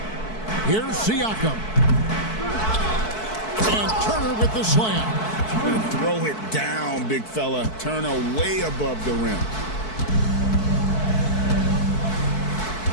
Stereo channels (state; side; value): late; right; 4.6 ms